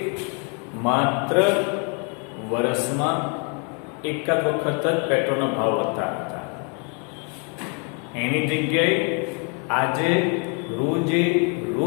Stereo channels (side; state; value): right; quieter; 37.2 dB